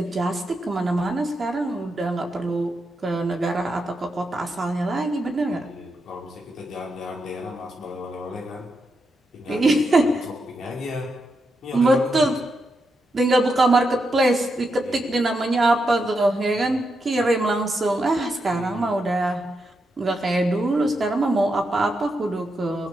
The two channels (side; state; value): both; normal; correlation 0.84